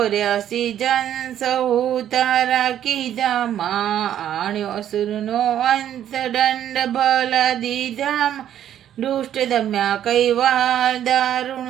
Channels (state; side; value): quieter; left; 10.7 dB